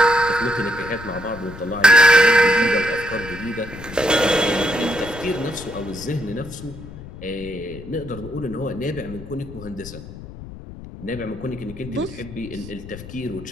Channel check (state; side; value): noise; left; rumble, 14 dB below the sound